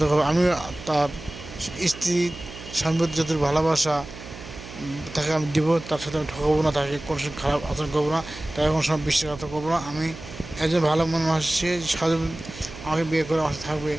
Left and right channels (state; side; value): noise; right; hum, 14 dB below the sound